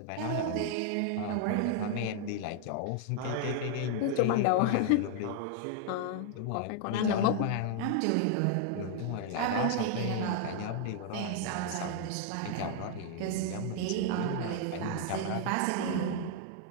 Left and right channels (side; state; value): both; different; correlation 0.00